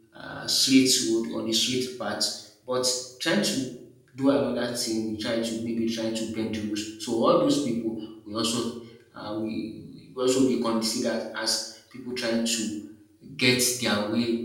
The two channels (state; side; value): identical; both; correlation 1.00